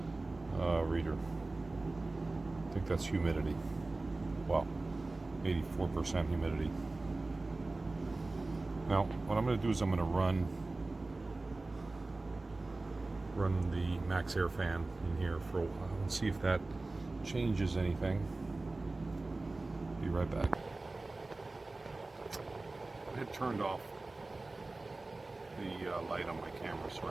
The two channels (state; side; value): quieter; left; 3.2 dB